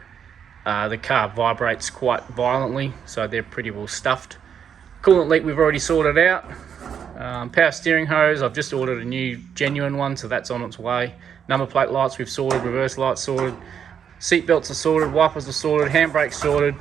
the car vibrates quite violently, so they're pretty well stuffed. Coolant leak we've already sorted out. Power steering hose, I've just ordered a new genuine one, so that's on its way. Number plate lights we've sorted, reverse lights sorted. Seat belts are sorted, wipers are sorted, handbrakes sorted.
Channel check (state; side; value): quieter; left; 7.9 dB